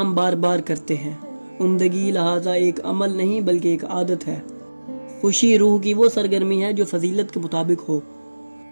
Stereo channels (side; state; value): both; inverted; correlation -1.00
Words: بار بار کرتے ہیں۔ عمدگی لہٰذا ایک عمل نہیں بلکہ ایک عادت ہے۔ خوشی روح کی وہ سرگرمی ہے جو فضیلت کے مطابق ہو۔